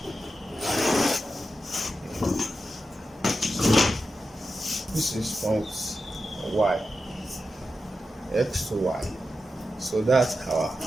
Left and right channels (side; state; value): both; normal; correlation 0.90